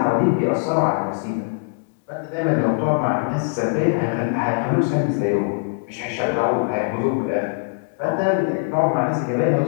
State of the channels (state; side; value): silent; right; digital silence